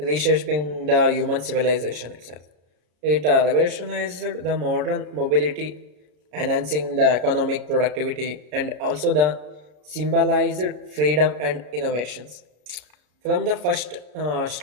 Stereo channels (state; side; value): late; left; 33 ms